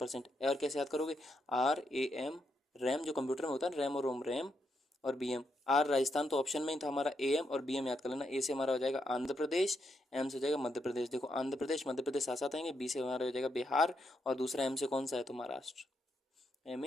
और कैसे याद करोगे, RAM, रैम जो कंप्यूटर में होता है रैम और रोम, रैम और BM। आर राजस्थान तो ऑप्शन में ही था हमारा, AM और BM याद कर लेना। ए से हमारा हो जाएगा आंध्र प्रदेश, M से हो जाएगा मध्य प्रदेश। देखो आंध्र प्रदेश मध्य प्रदेश साथ साथ आएंगे, B से हमारा हो जाएगा बिहार, और दूसरा M से कौन सा है तो महाराष्ट्र,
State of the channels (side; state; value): both; normal; correlation 0.80